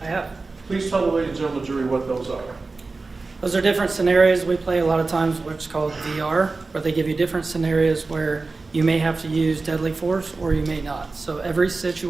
I have. Please tell the ladies and gentlemen of the jury what those are. Those are different scenarios we play a lot of times, what's called VR, where they give you different scenarios where you may have to use deadly force or you may not. So every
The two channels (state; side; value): quieter; left; 3.8 dB